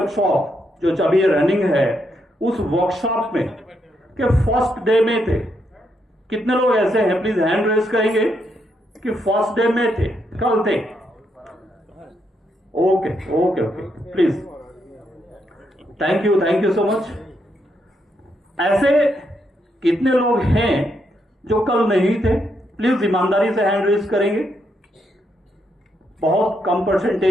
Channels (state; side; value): normal; both; correlation 0.79